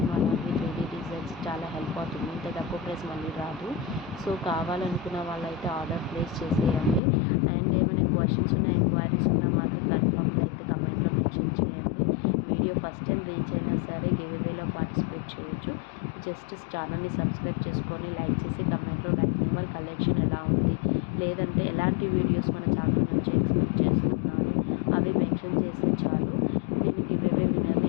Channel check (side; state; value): right; drops out; at 7.0 s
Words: అలాగే 3D డిజైన్స్ చాలా హెల్ప్ అవుతుంది. ఇంత తక్కువ ప్రైస్ మళ్ళీ రాదు. సో కావాలనుకున్న వాళ్ళైతే ఆర్డర్ ప్లేస్ చేసేయండి. అండ్ ఏమైనా క్వశ్చన్స్ ఉన్నా ఎంక్వైరీస్ ఉన్నా మాత్రం కన్ఫర్మ్గా అయితే కమెంట్లో మెన్షన్ చేయండి. వీడియో ఫస్ట్ టైం రీచ్ అయినా సరే గివ్ అవేలో పార్టిసిపేట్ చేయొచ్చు. జస్ట్ ఛానల్ని సబ్స్క్రైబ్ చేసుకొని లైక్ చేసి కమెంట్లో లైక్ నెంబర్ కలెక్షన్ ఎలా ఉంది, లేదంటే ఎలాంటి వీడియోస్ మన ఛానల్ నుంచి ఎక్స్పెక్ట్ చేస్తున్నారు అవి మెన్షన్ చేస్తే చాలు. నేను గివ్ అవే విన్నర్ని